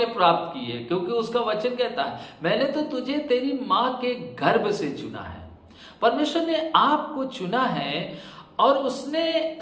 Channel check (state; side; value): identical; both; correlation 1.00